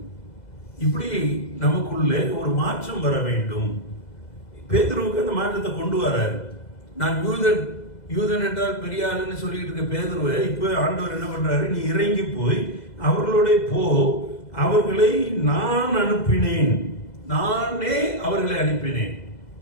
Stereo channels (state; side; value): late; right; 2.0 ms